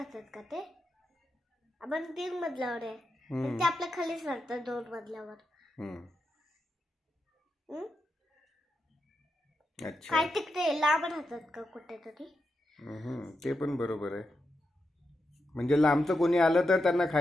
का ते? आपण 3 मजल्यावर आहे. ते आपल्या खालीच राहतात 2 मजल्यावर. अच्छा काय तिकडे लांब राहतात का कुठेतरी? ते पण बरोबर आहे. म्हणजे लांबचं कोणी आलं तर त्यांना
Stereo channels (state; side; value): normal; both; correlation 0.87